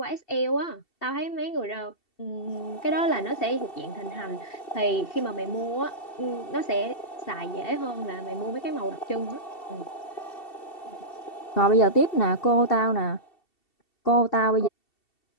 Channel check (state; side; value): late; right; 2.7 ms